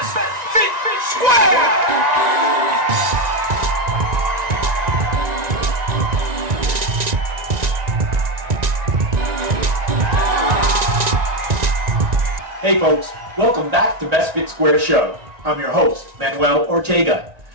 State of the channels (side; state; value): left; late; 1.9 ms